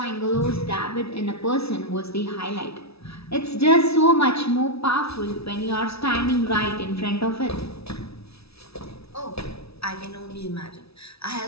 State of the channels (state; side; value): late; right; 0.77 ms